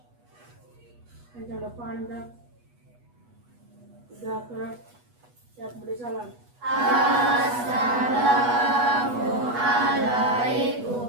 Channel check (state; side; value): late; left; 8.2 ms